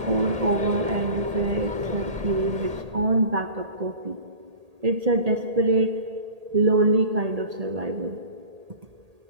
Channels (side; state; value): left; late; 1.8 ms